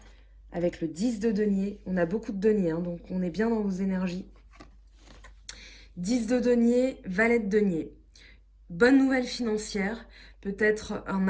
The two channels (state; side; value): identical; both; correlation 1.00